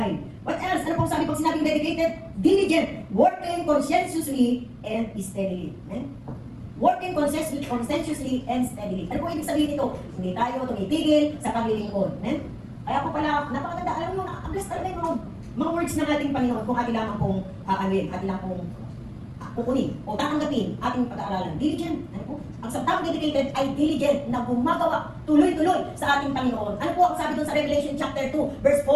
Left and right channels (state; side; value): identical; both; correlation 1.00